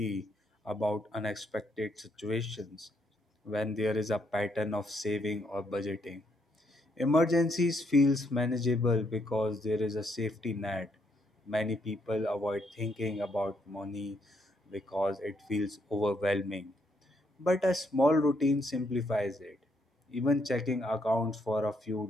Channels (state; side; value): normal; both; correlation 0.74